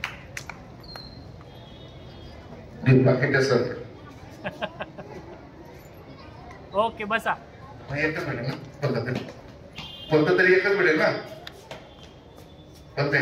बाकीच्या सर ओके बसा. एकच भेटेल ना? कोणतं तरी एकच भेटेल ना? पण ते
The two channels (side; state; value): both; identical; correlation 1.00